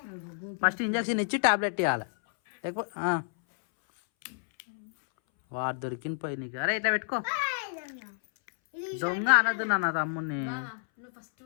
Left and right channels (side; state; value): right; silent; 58 dB below the other